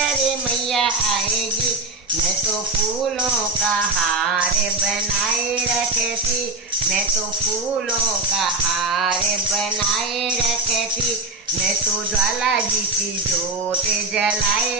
मैया आएगी। मैं तो फूलों का हार बनाए रखती, मैं तो फूलों का हार बनाए रखती, मैं तो ज्वाला जी की ज्योत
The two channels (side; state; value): left; quieter; 3.1 dB